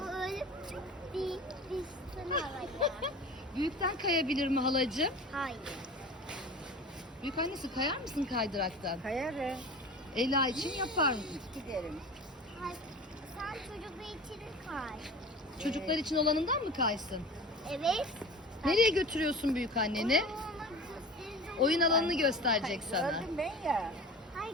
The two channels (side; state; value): both; normal; correlation 0.36